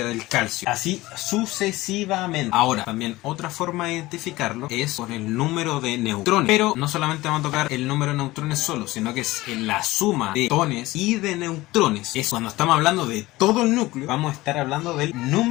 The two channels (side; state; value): right; quieter; 18.9 dB